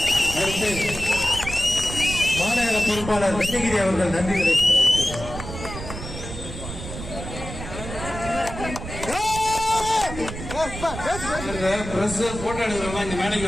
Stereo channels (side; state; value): right; noise; rumble, 9 dB below the sound